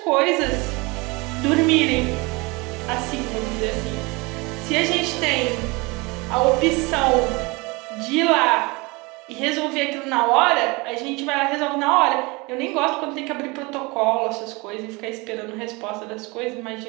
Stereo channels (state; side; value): quieter; left; 25.8 dB